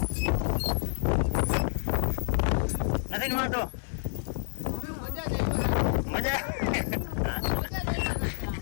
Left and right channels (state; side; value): silent; right; 59 dB below the other